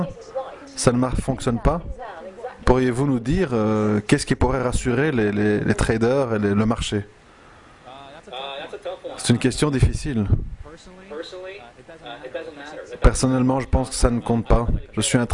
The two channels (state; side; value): identical; both; correlation 1.00